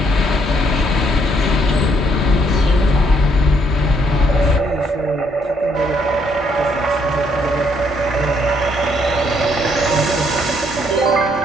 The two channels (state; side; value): normal; both; correlation 0.70